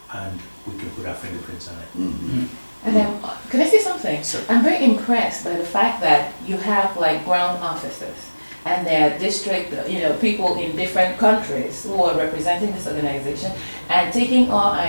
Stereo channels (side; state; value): both; inverted; correlation -1.00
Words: and we can put our fingerprints on it. Mhm. And then, can I say something? Sure. I'm very impressed by the fact that you have like ground officers and there are district, people in different countries who are representing this organization and taking our